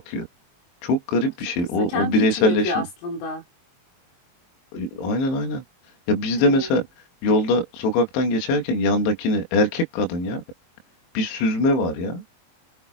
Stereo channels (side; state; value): right; late; 22 ms